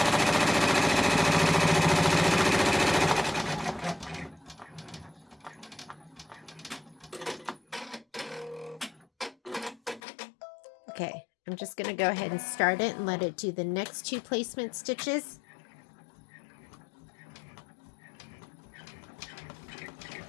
Okay, I'm just going to go ahead and start it and let it do the next 2 placement stitches.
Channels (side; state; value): right; drops out; at 10.0 s